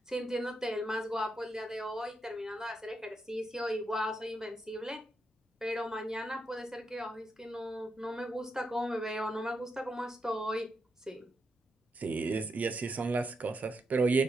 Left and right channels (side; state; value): both; normal; correlation 0.83